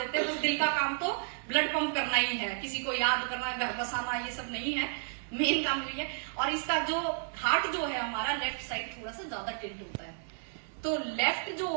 हैं। बस दिल का काम तो ब्लड पंप करना ही है, किसी को याद करना, घर बसाना, ये सब नहीं है, मेन काम यही है। और इसका जो हार्ट जो है हमारा लेफ्ट साइड थोड़ा सा ज्यादा टिल्ट होता है, तो लेफ्ट जो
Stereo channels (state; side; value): silent; left; digital silence